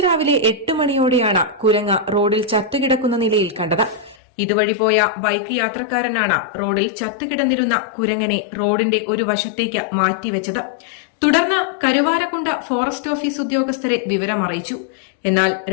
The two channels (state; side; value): drops out; right; at 4.2 s